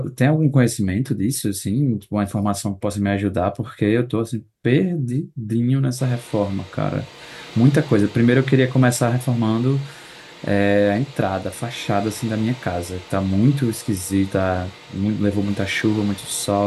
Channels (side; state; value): both; identical; correlation 1.00